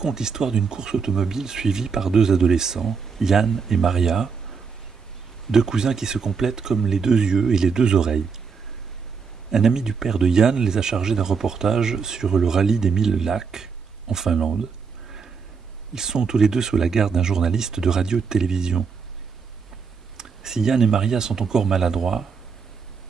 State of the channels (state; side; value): quieter; left; 5.6 dB